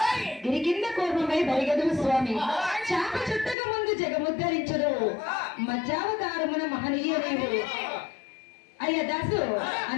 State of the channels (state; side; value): drops out; right; at 3.6 s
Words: గిరి కింద కోపమై బరిగదు స్వామి చాప చుట్టక ముందు జగముద్ధరించడు మధ్యావతారమున మహనీయ నీవు అయ్యా దాసు.